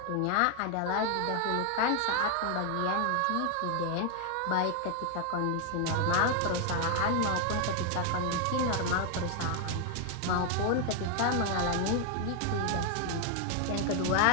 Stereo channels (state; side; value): different; both; correlation 0.00